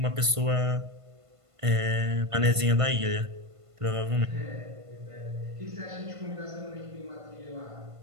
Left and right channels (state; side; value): late; left; 1.5 ms